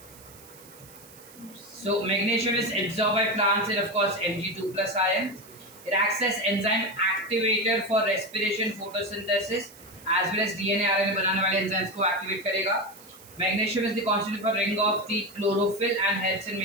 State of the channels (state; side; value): noise; right; hiss, 21 dB below the sound